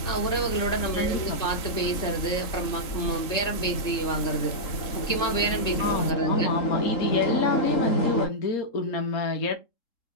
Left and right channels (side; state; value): right; late; 3.7 ms